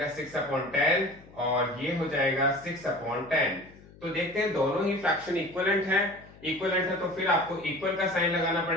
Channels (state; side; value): noise; left; hum, 23 dB below the sound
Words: 6/10 और ये हो जाएगा 6/10। तो देखते हैं दोनों ही फ्रैक्शन इक्विवेलेंट है, इक्विवेलेंट है तो फिर आपको इक्वल का साइन लगाना